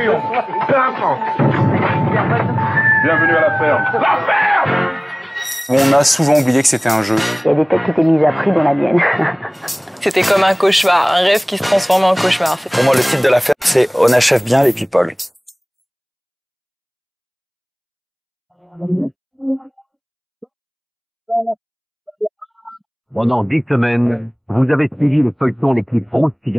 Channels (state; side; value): identical; both; correlation 1.00